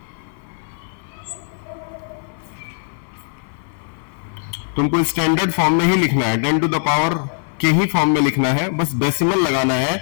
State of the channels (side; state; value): right; silent; 58 dB below the other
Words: तुमको स्टैंडर्ड फॉर्म में ही लिखना है, 10 टू द पावर के ही फॉर्म में लिखना है, बस डेसिमल लगाना